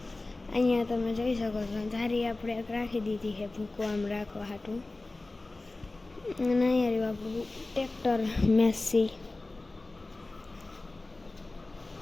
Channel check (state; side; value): quieter; right; 3.1 dB